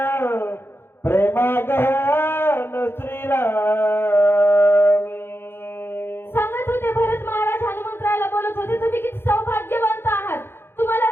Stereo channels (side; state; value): right; late; 0.11 ms